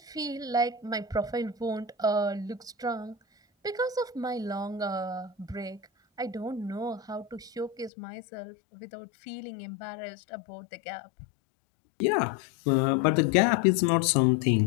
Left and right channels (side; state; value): right; drops out; at 7.9 s